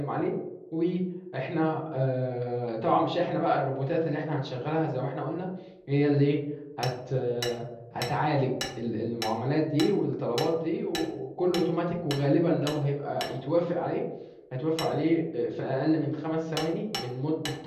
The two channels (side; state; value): both; identical; correlation 1.00